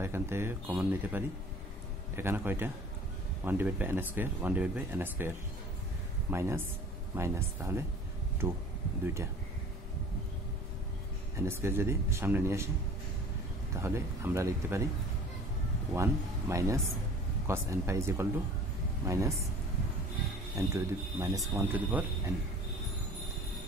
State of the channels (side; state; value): both; normal; correlation 0.46